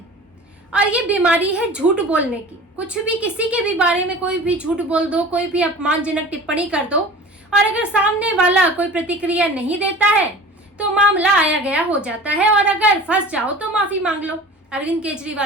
और ये बीमारी है झूठ बोलने की। कुछ भी किसी के भी बारे में कोई भी झूठ बोल दो, कोई भी अपमानजनक टिप्पणी कर दो और अगर सामने वाला कोई प्रतिक्रिया नहीं देता है तो मामला आया गया हो जाता है और अगर फंस जाओ तो माफी मांग लो। अरविंद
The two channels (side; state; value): both; normal; correlation 0.40